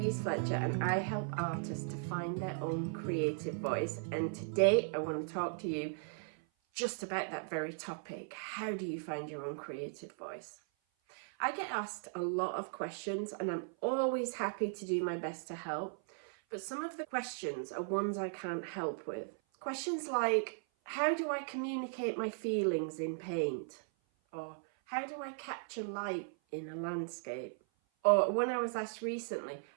Fletcher and I help artists to find their own creative voice, and today I want to talk to you just about that very topic. How do you find your own creative voice? I get asked a lot of questions and I'm always happy to do my best to help, but some of the questions are ones I can't help with. Questions like, how do I communicate my feelings in paint? Or how do I capture light in a landscape? Or when I was asked recently,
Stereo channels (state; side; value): silent; left; 53 dB below the other